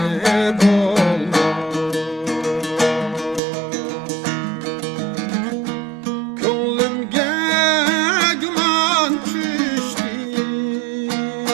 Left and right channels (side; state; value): left; drops out; at 3.4 s